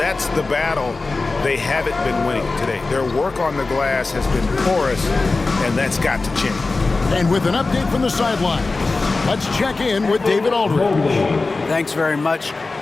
the battle they haven't been winning today. Their work on the glass has been porous, and that's got to change. And with an update from the sideline, let's check in with David Aldridge. Thanks very much.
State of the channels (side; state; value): right; quieter; 3.6 dB